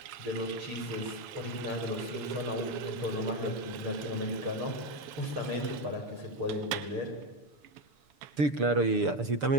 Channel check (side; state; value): left; late; 7.2 ms